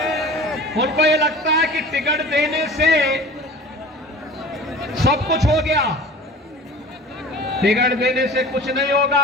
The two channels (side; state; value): both; normal; correlation 0.39